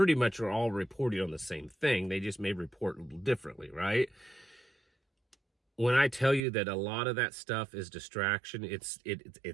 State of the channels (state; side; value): drops out; left; at 6.4 s